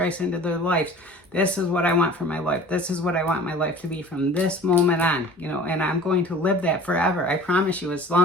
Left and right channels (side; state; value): both; normal; correlation 0.44